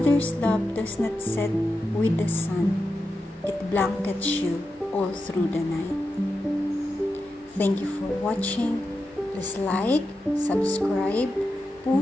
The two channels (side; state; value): both; normal; correlation 0.89